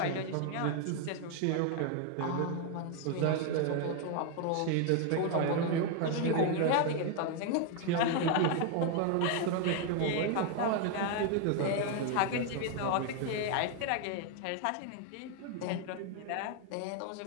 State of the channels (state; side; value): different; both; correlation 0.01